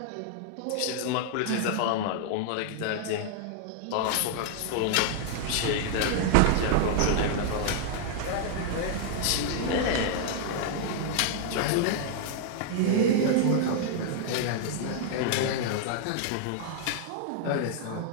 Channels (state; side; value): different; both; correlation 0.00